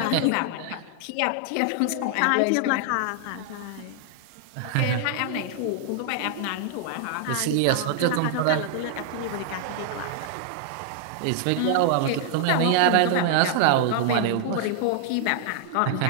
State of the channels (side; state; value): both; different; correlation 0.00